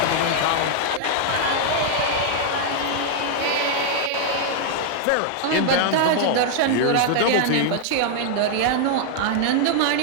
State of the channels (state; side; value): different; both; correlation -0.01